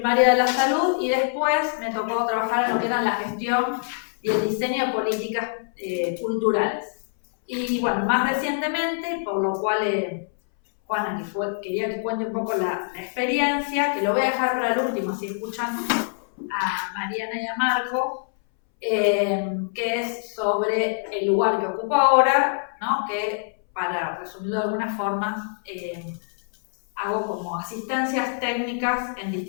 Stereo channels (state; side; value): silent; right; 62 dB below the other